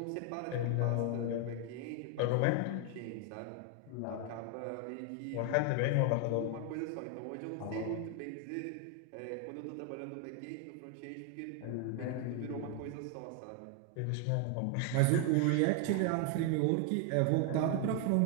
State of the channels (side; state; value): both; different; correlation 0.01